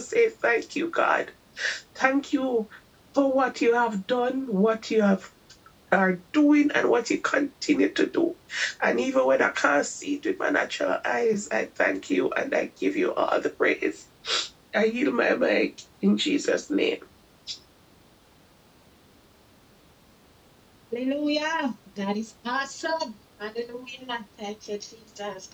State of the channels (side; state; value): both; identical; correlation 1.00